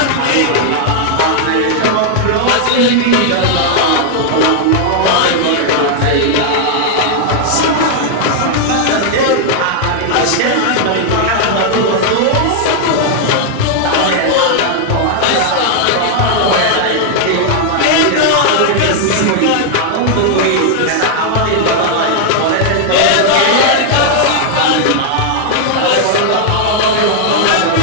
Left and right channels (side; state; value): both; different; correlation 0.00